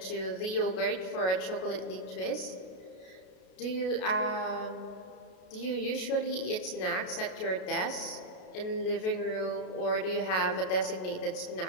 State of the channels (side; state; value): right; late; 33 ms